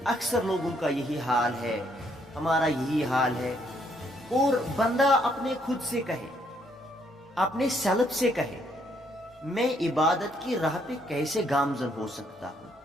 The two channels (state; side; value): normal; both; correlation 0.70